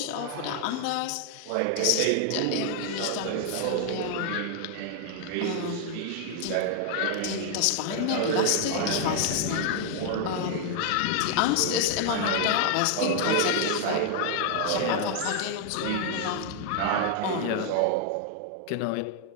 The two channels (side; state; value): both; different; correlation 0.00